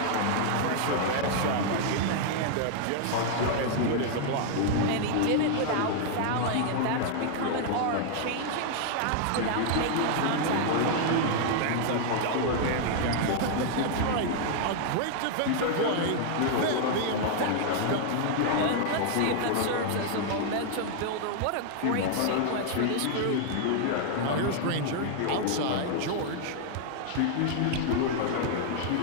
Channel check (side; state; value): both; different; correlation 0.00